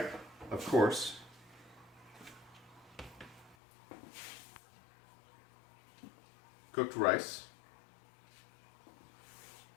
of course. Cooked rice.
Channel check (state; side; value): drops out; right; at 3.6 s